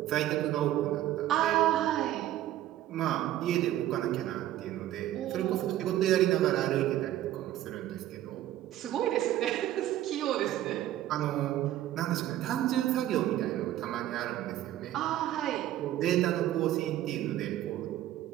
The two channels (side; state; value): left; quieter; 13.3 dB